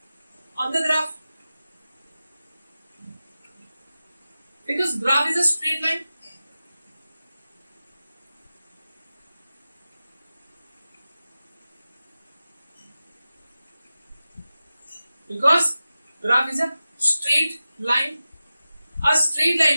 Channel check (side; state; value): both; inverted; correlation -0.94